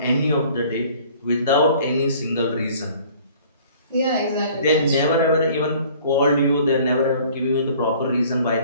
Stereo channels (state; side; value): inverted; both; correlation -0.53